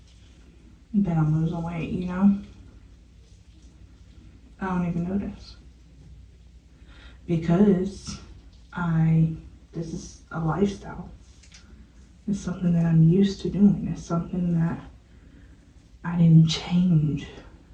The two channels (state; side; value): identical; both; correlation 1.00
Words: that I'm losing weight, you know? I don't even notice. Because this is a lifestyle. It's something that I'm used to doing. It's something that I didn't change